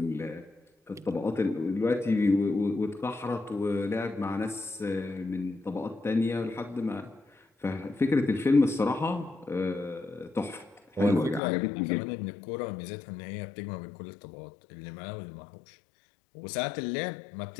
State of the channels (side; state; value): right; drops out; at 11.4 s